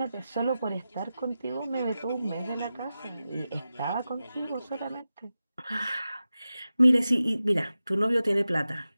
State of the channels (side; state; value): both; inverted; correlation -0.93